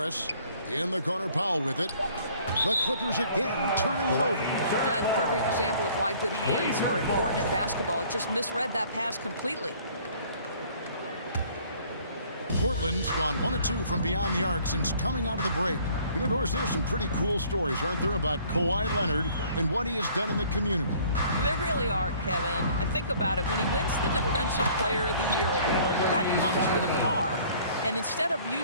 In the corner, Powell with it. The Clippers again turning it over. That's a perfect example of why good hands are important in basketball. It just misread that pass completely. Portland's gone 1 of 2 from beyond the arc since coming out of the break. You know, Doris, there's some pretty cool stories, aren't there, about Kawhi Leonard and what he has done in the community. There really are, Kevin. I think about it. When he wins the Defensive Player of the Year award, that comes with a car. And instead of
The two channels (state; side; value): inverted; both; correlation -0.55